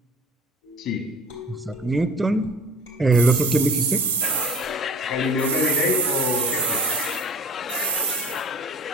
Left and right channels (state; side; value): normal; both; correlation 0.43